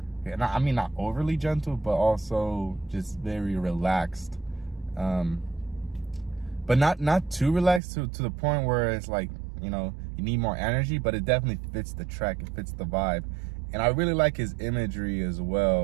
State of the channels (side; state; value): left; drops out; at 7.8 s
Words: mean not overly gentle, but also just very relaxed, but not too relaxed to the point where it's like, you know, you need more energy, but it definitely fits the track, it fits the vibe. And I really like his imagery as